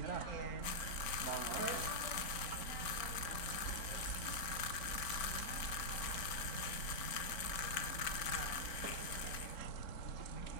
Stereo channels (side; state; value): right; late; 4.4 ms